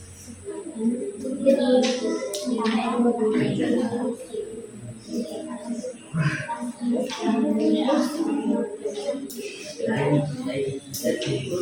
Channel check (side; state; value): both; identical; correlation 1.00